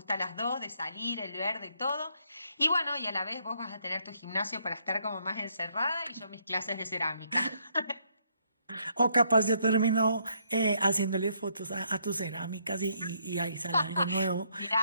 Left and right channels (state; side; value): inverted; both; correlation -0.72